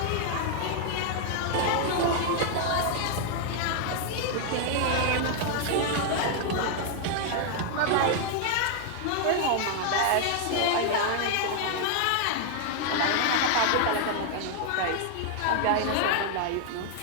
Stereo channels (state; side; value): different; both; correlation 0.00